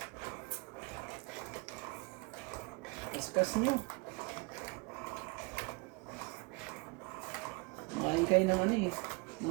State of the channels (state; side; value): quieter; left; 28.7 dB